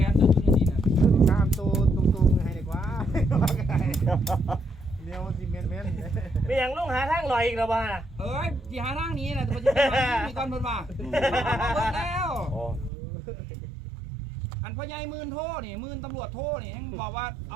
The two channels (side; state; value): left; drops out; at 12.9 s